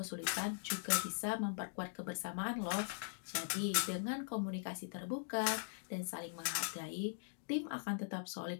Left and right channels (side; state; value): right; silent; digital silence